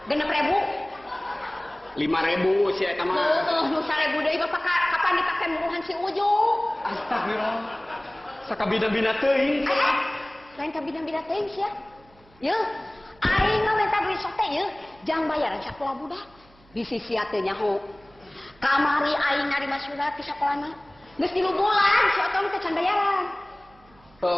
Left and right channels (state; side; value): noise; right; hum, 28 dB below the sound